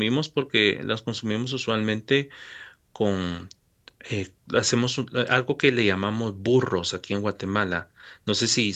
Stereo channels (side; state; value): both; identical; correlation 1.00